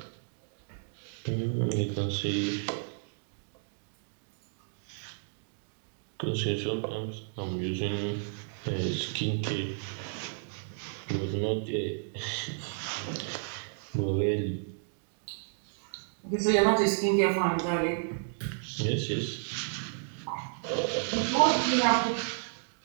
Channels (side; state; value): left; silent; digital silence